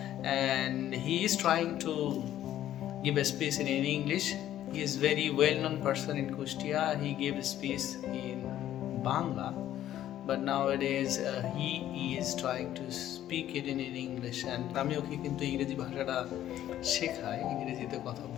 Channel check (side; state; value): right; quieter; 12.3 dB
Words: And he is trying to give a speech in English. He is very well-known person in Kustia. He gave a speech in Bangla, but nowadays he is trying to speak it in English, and আমি ওকে কিন্তু ইংরেজি ভাষাটা শেখাই, ইংরেজিতে কথা